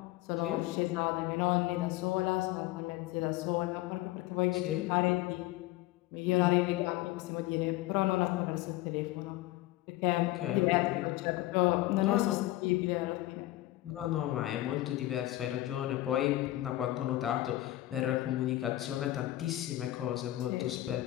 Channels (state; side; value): quieter; right; 16.4 dB